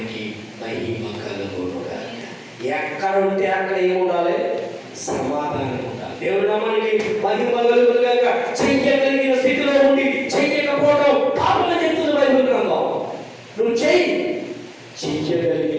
మహిమ కలుగునుగాక. ఎక్కడ ఉంటే అక్కడ ఏముండాలి? సమాధానం ఉండాలి. దేవుని నామానికి మహిమ కలుగునుగాక. చెయ్యగలిగిన స్థితిలో ఉండి చెయ్యకపోవడం పాపం చెప్తుంది బైబిల్ గ్రంథం. నువ్వు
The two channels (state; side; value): identical; both; correlation 1.00